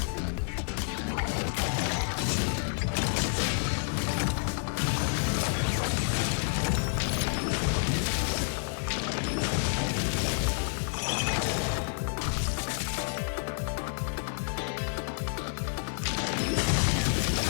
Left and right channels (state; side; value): silent; right; 58 dB below the other